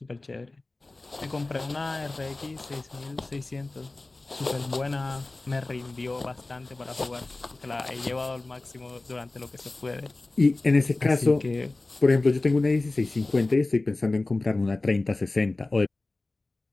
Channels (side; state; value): right; quieter; 3.1 dB